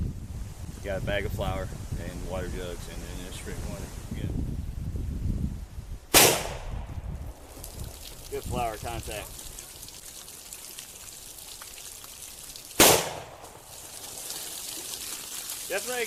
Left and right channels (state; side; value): identical; both; correlation 1.00